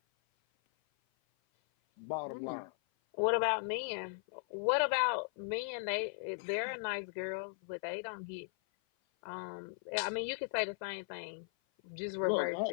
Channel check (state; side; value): silent; right; 53 dB below the other